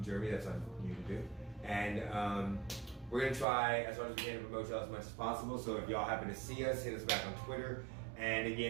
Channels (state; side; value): drops out; left; at 3.5 s